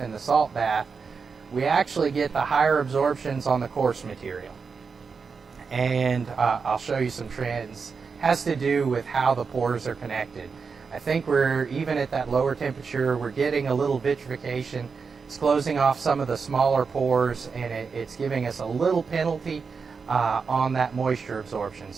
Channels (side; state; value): left; quieter; 5.3 dB